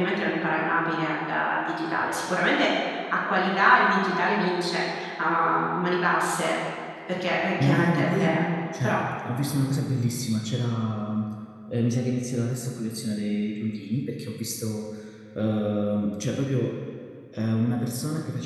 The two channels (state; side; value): identical; both; correlation 1.00